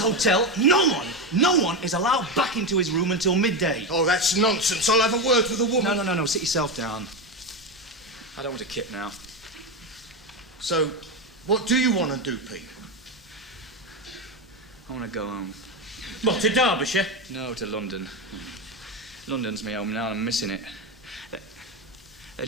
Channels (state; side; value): normal; both; correlation 0.13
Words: no one is allowed back into his room until midday. Oh, that's nonsense. I'll have a word with the woman. No. Sit yourself down. I don't want a kip now. So, what do you want to do, Pete? I want to go home. What, to Derbyshire? No, to London. London's my home now and I'm missing it. They